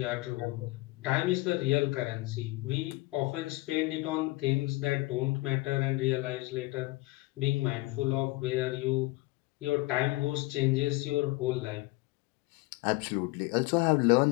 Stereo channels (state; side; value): quieter; right; 21.5 dB